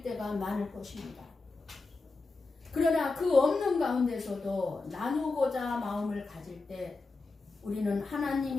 때가 많을 것입니다. 그러나 그 없는 가운데서도 나누고자 마음을 가질 때 우리는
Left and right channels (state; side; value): quieter; right; 3.6 dB